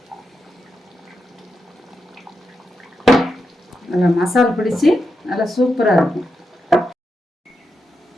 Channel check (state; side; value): normal; both; correlation 0.86